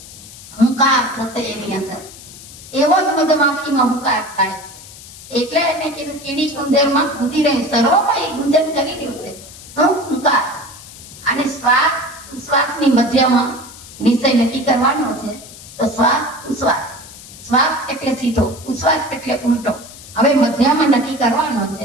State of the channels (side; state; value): left; noise; hiss, 17 dB below the sound